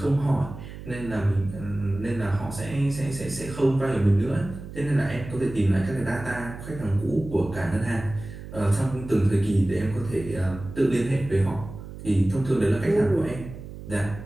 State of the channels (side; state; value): right; noise; hum, 12 dB below the sound